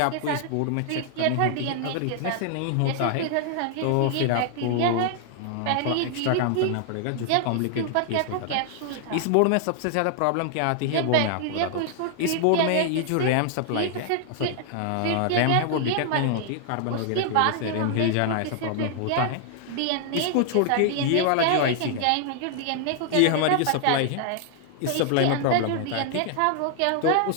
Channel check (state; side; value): different; both; correlation 0.00